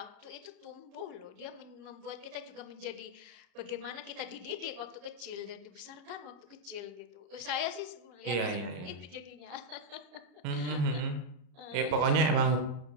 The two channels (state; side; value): late; left; 33 ms